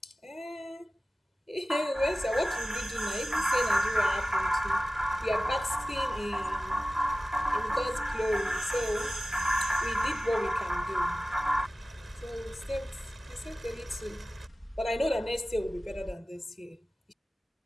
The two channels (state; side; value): normal; both; correlation 0.96